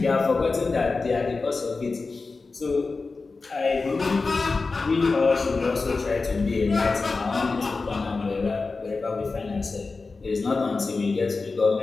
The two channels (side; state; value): right; quieter; 4.0 dB